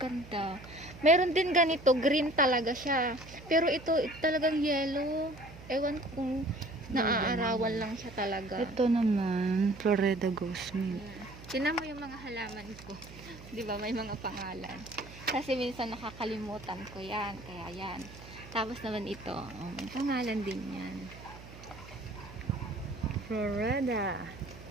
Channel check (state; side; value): noise; right; hum, 17 dB below the sound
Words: Meron din ganito, green talaga siya. Pero ito talagang yellow. Ewan ko kung naaarawan lang siya talaga. Ito naman, Florida Ghost Mint. Tinan mo yung mga halaman ko. Di ba may mga pangalan. Kasi minsan nakakalimutan ko yan. Kaya yan. Tapos naman ito. Oh, may pangalan din yan. Florida.